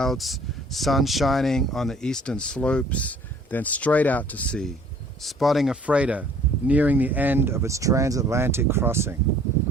sun shining on the eastern slopes, then straight out to sea, spotting a freighter nearing the end of its transatlantic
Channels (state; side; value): normal; both; correlation 0.55